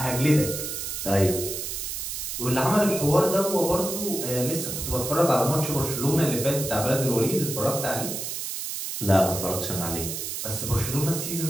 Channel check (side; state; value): right; noise; hiss, 5 dB below the sound